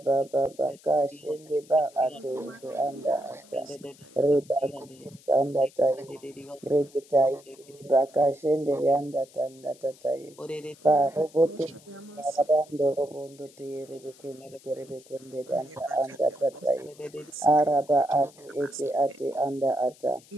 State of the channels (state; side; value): noise; left; hiss, 25 dB below the sound